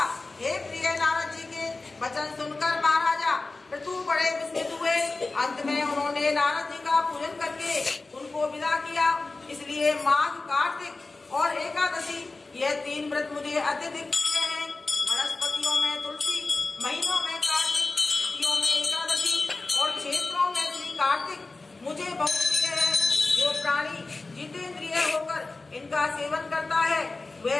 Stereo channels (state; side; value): quieter; right; 3.5 dB